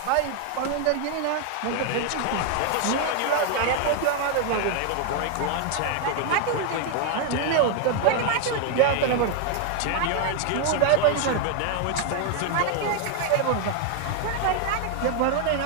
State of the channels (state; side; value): different; both; correlation 0.00